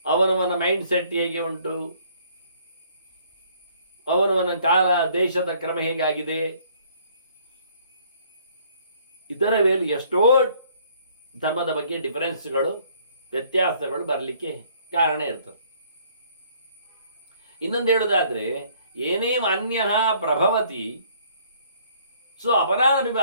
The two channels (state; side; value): inverted; both; correlation -0.61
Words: ಅವನವನ ಮೈಂಡ್ ಸೆಟ್ ಹೇಗೆ ಉಂಟು, ಅವನವನ ಕಾಲ ದೇಶದ ಕ್ರಮ ಹೇಗಾಗಿದೆ, ಇದರ ಮೇಲೆ ಎಷ್ಟೋ ಧರ್ಮದ ಬಗ್ಗೆ ಡಿಫರೆನ್ಸ್ಗಳು, ವ್ಯತ್ಯಾಸಗಳು ಬರಲಿಕ್ಕೆ ಕಾರಣ ಇರ್ತದೆ. ಇನ್ನೊಂದು ಹೇಳುವುದಾದ್ರೆ, ಏನೇ ಅನ್ಯ ಪ್ರಭವತಿ ಸೊ ಅಪರಾಧ